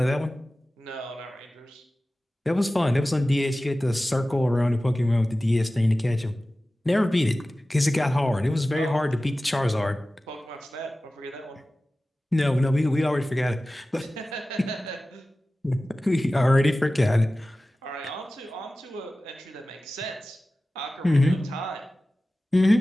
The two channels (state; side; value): normal; both; correlation 0.96